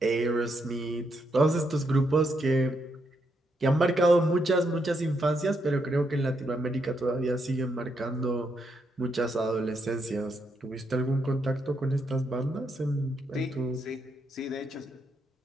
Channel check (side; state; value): both; normal; correlation 0.79